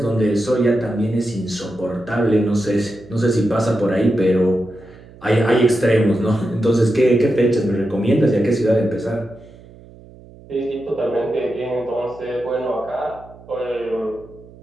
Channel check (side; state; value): right; noise; hum, 21 dB below the sound